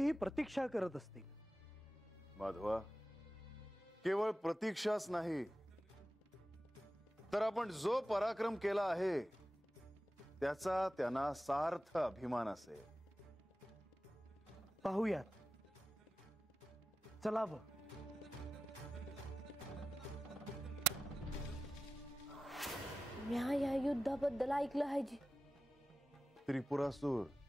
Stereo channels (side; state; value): both; normal; correlation 0.94